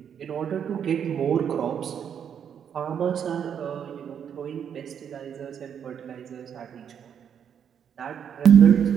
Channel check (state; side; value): quieter; left; 8.2 dB